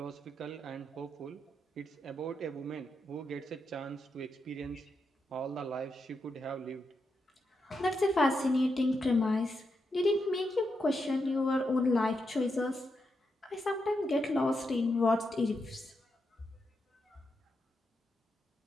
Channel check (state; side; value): normal; both; correlation 0.84